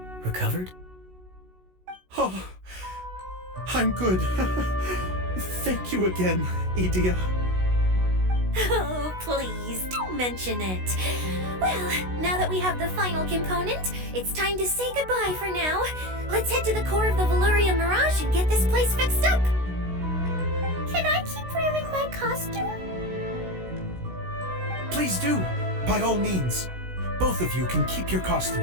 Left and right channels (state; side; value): late; left; 16 ms